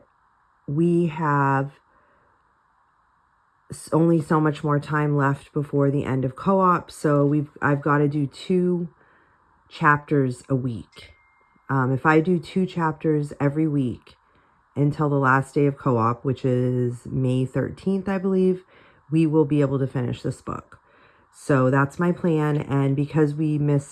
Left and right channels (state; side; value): identical; both; correlation 1.00